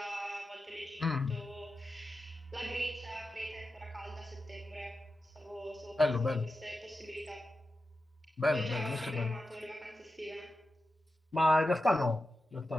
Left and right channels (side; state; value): both; normal; correlation 0.91